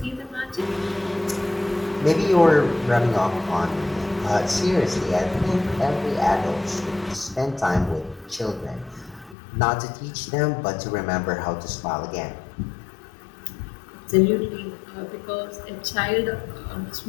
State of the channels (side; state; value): right; drops out; at 9.3 s